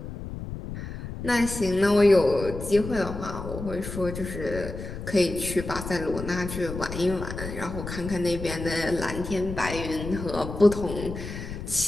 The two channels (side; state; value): left; noise; rumble, 8 dB below the sound